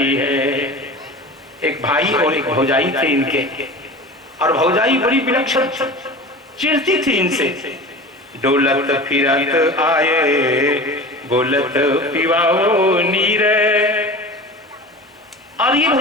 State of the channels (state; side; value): normal; both; correlation 0.35